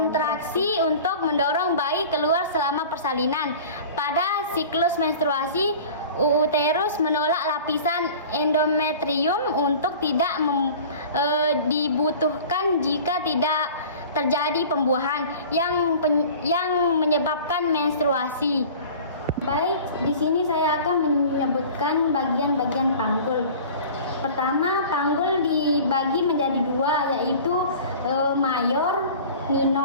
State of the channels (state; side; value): inverted; both; correlation -0.41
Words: untuk mendorong bayi keluar selama persalinan. Pada siklus menstruasi, uterus menolak lapisan endometrium untuk tidak dibutuhkan jika tidak terjadi pembuahan yang menyebabkan menstruasi. Baik, di sini saya akan menyebutkan bagian-bagian panggul. Pertama, panggul dibagi menjadi dua, yaitu mayor,